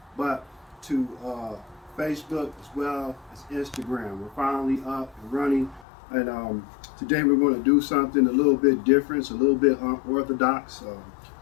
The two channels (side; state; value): right; drops out; at 5.9 s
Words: but to Facebook as well as Instagram. We're finally up and running, and today we're going to do something a little bit different, a little bit unorthodox.